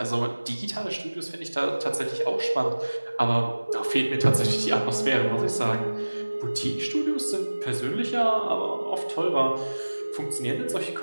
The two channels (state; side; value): inverted; both; correlation -1.00